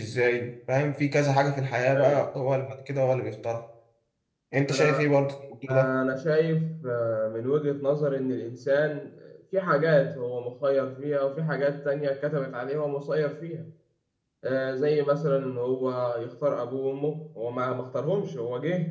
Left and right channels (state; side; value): identical; both; correlation 1.00